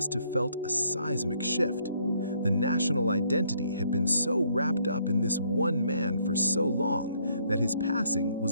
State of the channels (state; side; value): inverted; both; correlation -0.68